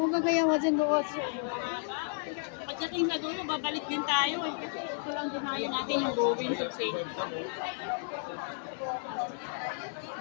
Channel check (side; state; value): right; silent; digital silence